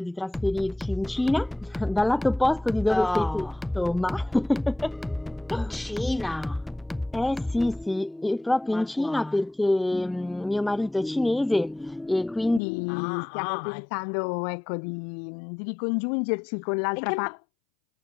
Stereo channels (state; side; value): drops out; right; at 12.6 s